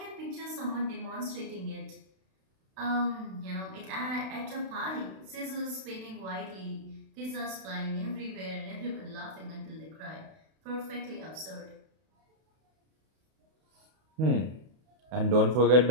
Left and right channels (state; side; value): late; left; 32 ms